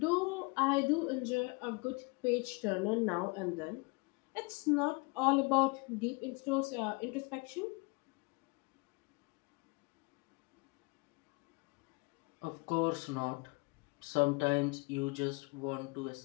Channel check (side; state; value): right; quieter; 28.7 dB